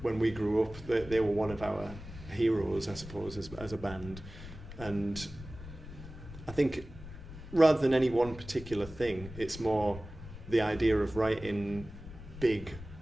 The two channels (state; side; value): noise; left; rumble, 13 dB below the sound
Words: when we grew up, they were one of our heroes, I suppose, as a band. And I think rather than any one particular thing, it's more the idea of writing big